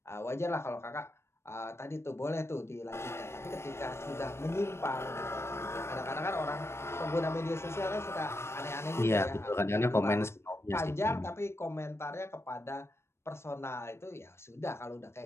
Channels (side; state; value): right; late; 0.12 ms